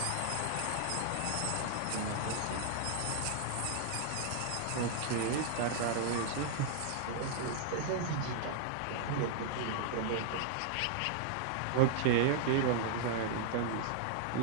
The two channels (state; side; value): different; both; correlation -0.01